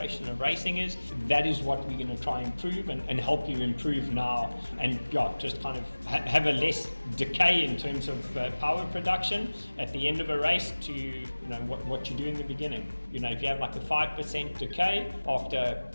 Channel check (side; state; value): both; inverted; correlation -1.00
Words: of racing is, that is what we're going to try and improve and help you improve now, and just kind of have a less decay in terms of power production at the end of a race to what you do in the beginning. If you have like a 5% decay after